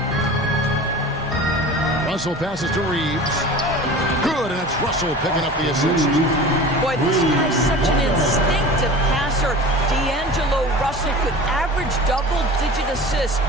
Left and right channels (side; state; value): both; normal; correlation 0.37